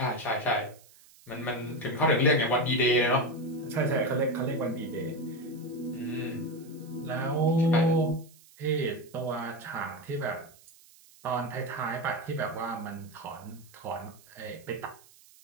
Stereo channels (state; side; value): noise; right; hiss, 25 dB below the sound